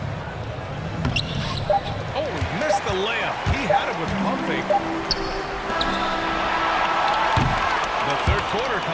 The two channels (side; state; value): both; identical; correlation 1.00